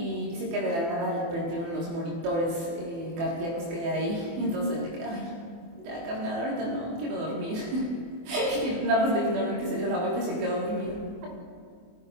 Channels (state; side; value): late; left; 24 ms